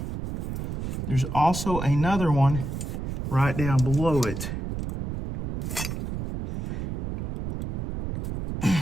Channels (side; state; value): right; noise; rumble, 3 dB below the sound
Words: There's also another one right down below it.